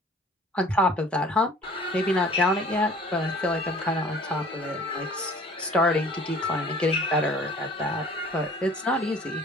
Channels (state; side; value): normal; both; correlation 0.50